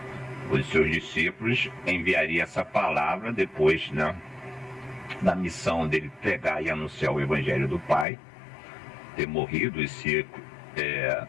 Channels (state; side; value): drops out; right; at 8.1 s